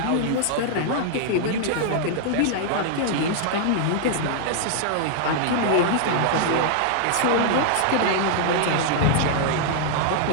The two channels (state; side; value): different; both; correlation -0.01